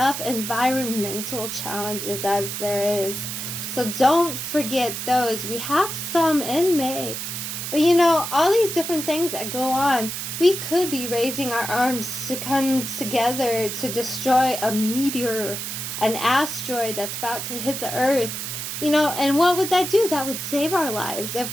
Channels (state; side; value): noise; right; hiss, 5 dB below the sound